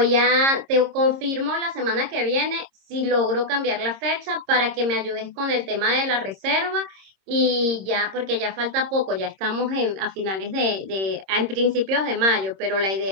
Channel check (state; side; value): late; left; 26 ms